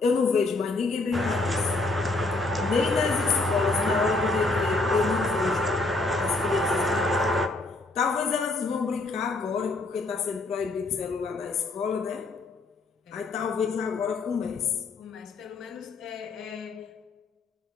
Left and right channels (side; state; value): right; quieter; 3.3 dB